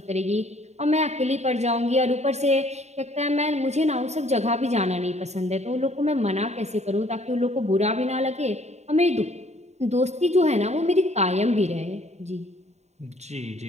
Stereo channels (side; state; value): left; late; 0.32 ms